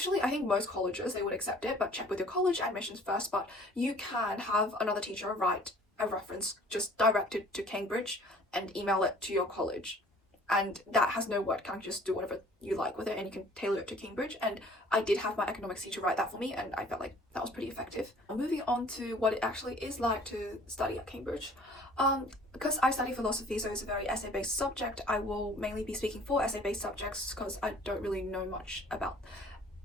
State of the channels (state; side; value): normal; both; correlation 0.52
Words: I think most colleges, they would accept it, but check with your college admissions first. But you can have another teacher write a reference just directed to Cambridge and email it to your college, and that has no word count. Just do whatever you like with it and you can tailor it to Cambridge. And I did have my economics teacher write that for me and I felt like that was pretty effective. Moving on to what it actually is like to study at Cambridge. Because I study philosophy, so it's a very essay-based subject, I will mainly be speaking for essay-based subjects because I don't really know much about